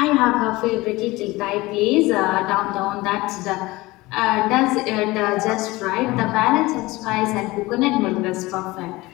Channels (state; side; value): quieter; right; 20.6 dB